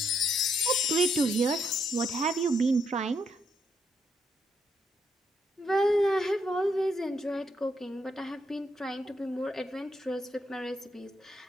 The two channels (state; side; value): normal; both; correlation 0.77